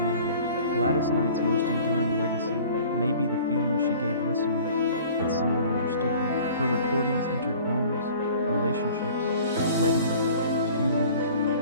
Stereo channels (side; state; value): both; inverted; correlation -0.48